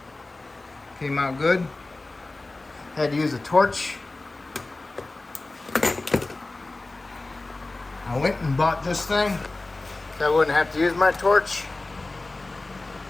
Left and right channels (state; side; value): quieter; right; 3.1 dB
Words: Came out good. Had to use a torch. I went and bought this thing so I wouldn't have to use my torch.